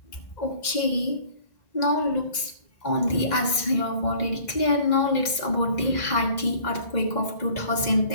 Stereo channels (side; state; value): right; late; 2.0 ms